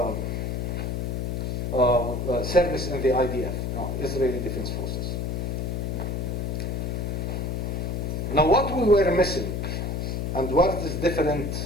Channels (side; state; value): left; noise; hum, 1 dB below the sound